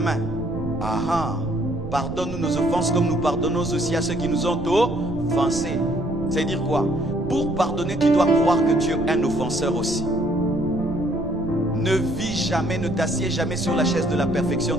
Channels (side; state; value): right; noise; rumble, 10 dB below the sound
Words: main. Ah ah, pardonne-nous nos offenses comme nous pardonnons aussi à ceux qui nous ont offensés. C'est dire quoi? Pour pardonner, tu dois croire que tu es un offenseur aussi. Ne vis jamais, ne t'assieds jamais sur la chaise de la perfection,